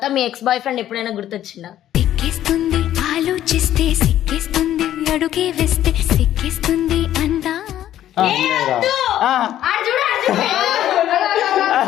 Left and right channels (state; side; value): quieter; right; 12.1 dB